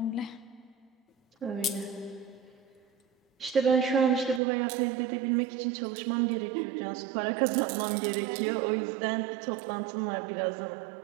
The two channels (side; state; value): left; drops out; at 4.4 s